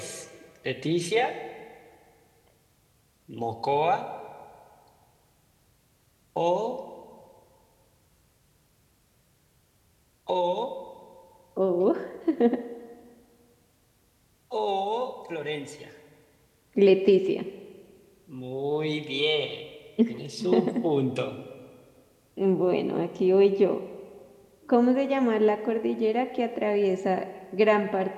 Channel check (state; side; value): identical; both; correlation 1.00